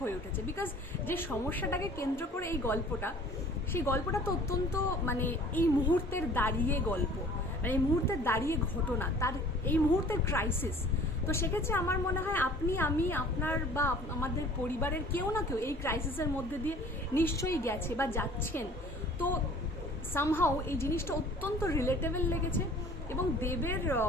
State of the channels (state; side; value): normal; both; correlation 0.49